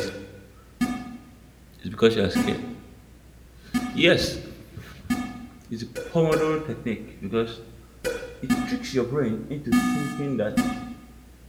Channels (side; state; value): both; identical; correlation 1.00